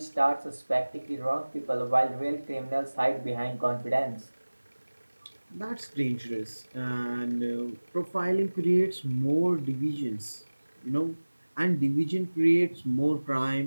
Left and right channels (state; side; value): inverted; both; correlation -1.00